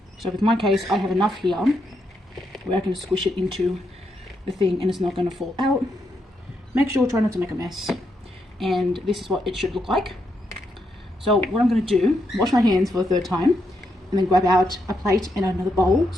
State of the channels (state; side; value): normal; both; correlation 0.81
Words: So with my case, I have enough here where I can squish it into the thing and it's not going to fall out. Make sure, try not to make a mess. And this is what it should look like. So what I'm going to do, wash my hands for the third time, and then grab out a plate and another bowl so